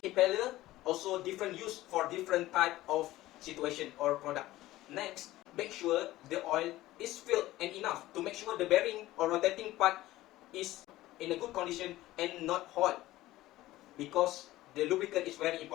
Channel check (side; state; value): right; quieter; 16.5 dB